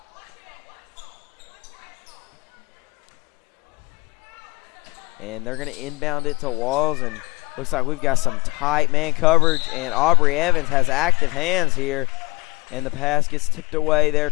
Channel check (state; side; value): quieter; right; 24.5 dB